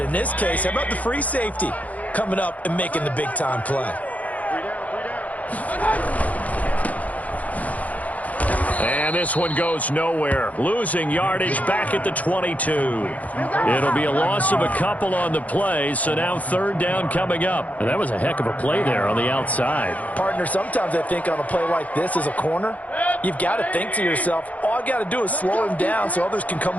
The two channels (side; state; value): right; late; 0.072 ms